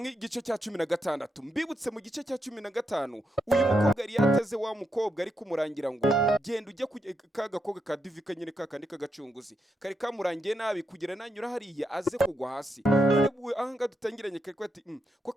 igice cya 16. Mbibutse mu gice cya 15 uyu mukobwa yari yateze wa mukobwa ari kumurangira ngo genda ujye kagakobwa ka divika nyine kakandi kagacunguzi kari kamurangiye nabi kugira nanyura hariya aze kugwa hasi. None ahanga dutangiranye kari kwati ko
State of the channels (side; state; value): both; normal; correlation 0.82